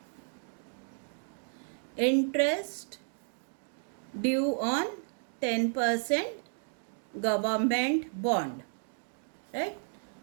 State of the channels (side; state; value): left; silent; digital silence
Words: Interest due on 10% government bond. Right?